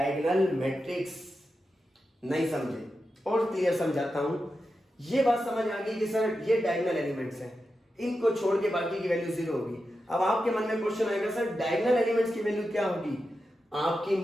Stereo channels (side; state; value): both; normal; correlation 0.90